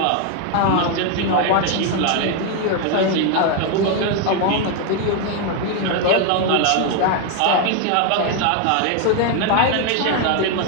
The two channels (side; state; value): both; different; correlation 0.01